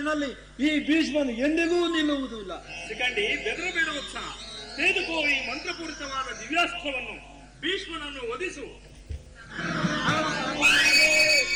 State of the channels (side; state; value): both; identical; correlation 1.00